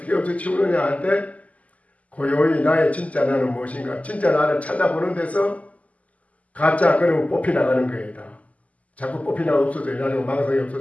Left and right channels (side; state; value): right; late; 0.071 ms